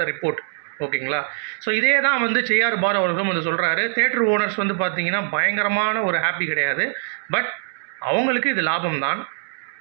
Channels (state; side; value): silent; left; 64 dB below the other